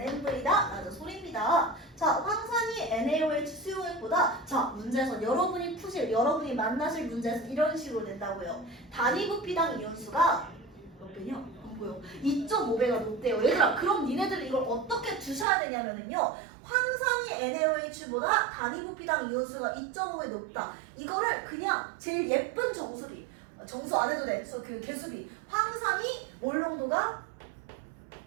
라는 소리입니다. 자, 황산이 NaOH 수용액보다 자, 문제에서 여러분이 만나실 문제에서 이런 식으로 된다고요. 단위 부피당 이온수가 몇 배냐? 안 보여. 2.5배가 높대요. 얘들아, 그럼 니네들은 이걸 어떻게 두셔야 되냐면은요. 황산이 NaOH보다 단위 부피당 이온수가 2.5배 높다. 이거를 그냥 제일 예쁜 정수 안 해도 돼. 그 개수비. 황산이 몰 농도가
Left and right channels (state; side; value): drops out; left; at 15.5 s